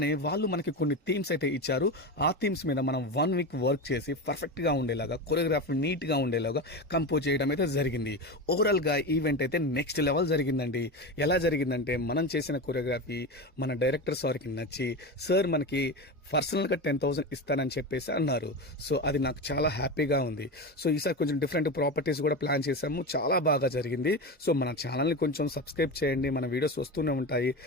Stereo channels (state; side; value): normal; both; correlation 0.22